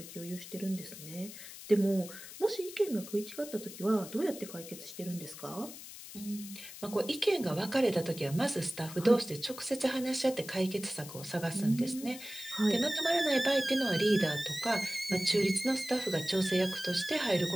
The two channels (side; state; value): left; noise; hiss, 13 dB below the sound